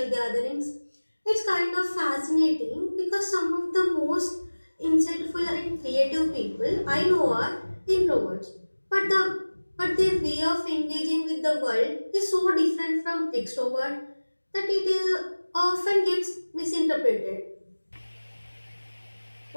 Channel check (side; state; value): both; inverted; correlation -1.00